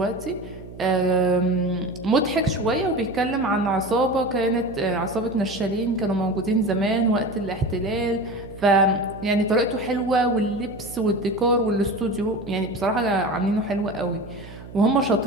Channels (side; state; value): right; noise; hum, 16 dB below the sound